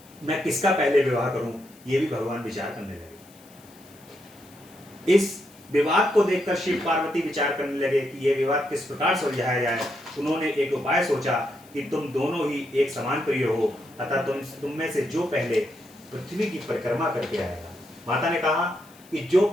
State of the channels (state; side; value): noise; left; hiss, 26 dB below the sound